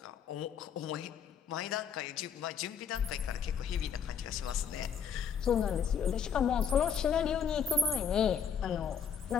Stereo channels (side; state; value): right; quieter; 7.1 dB